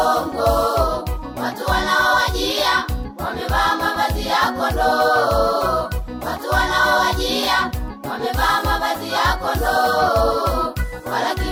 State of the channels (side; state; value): both; identical; correlation 1.00